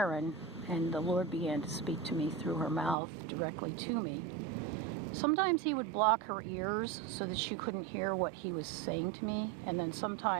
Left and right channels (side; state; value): left; drops out; at 3.0 s